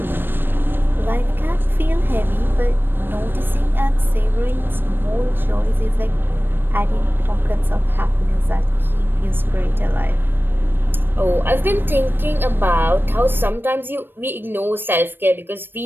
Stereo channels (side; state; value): left; late; 0.097 ms